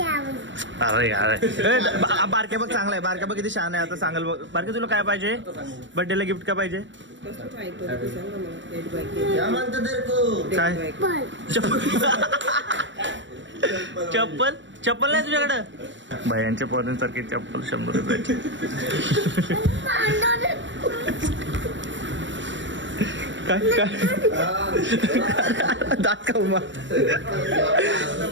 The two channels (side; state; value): left; late; 0.54 ms